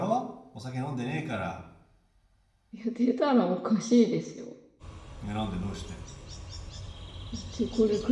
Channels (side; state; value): both; identical; correlation 1.00